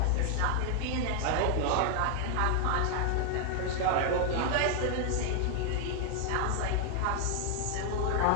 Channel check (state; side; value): different; both; correlation 0.00